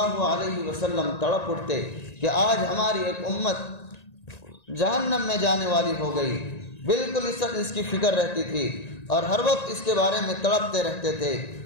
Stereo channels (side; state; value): right; late; 1.9 ms